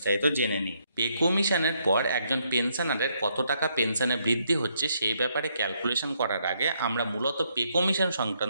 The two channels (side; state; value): both; inverted; correlation -0.74